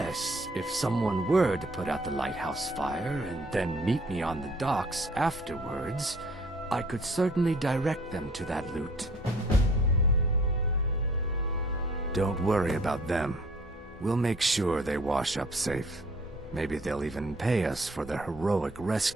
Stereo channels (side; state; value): both; normal; correlation 0.56